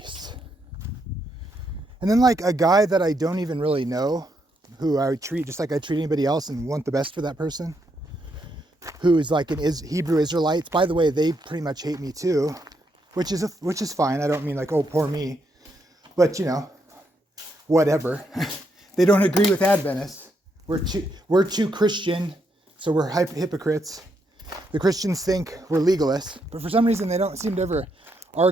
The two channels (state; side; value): normal; both; correlation 0.78